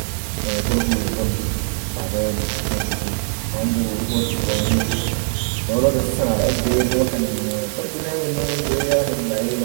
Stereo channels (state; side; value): silent; left; digital silence